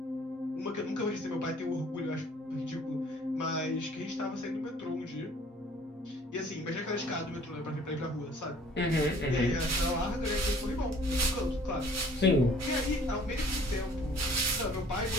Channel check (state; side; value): normal; both; correlation 0.55